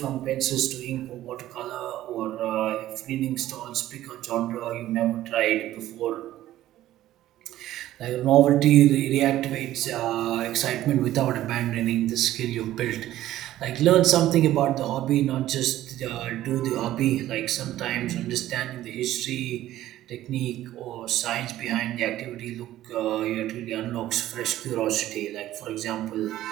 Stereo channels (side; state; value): left; quieter; 14.0 dB